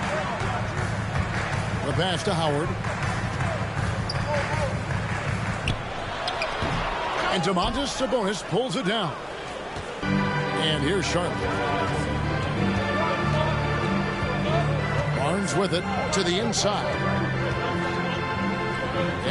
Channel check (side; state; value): both; identical; correlation 1.00